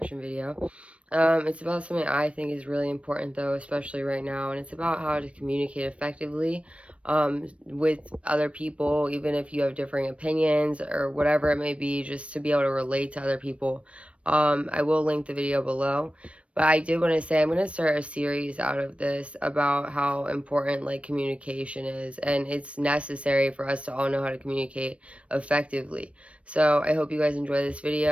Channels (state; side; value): late; left; 0.062 ms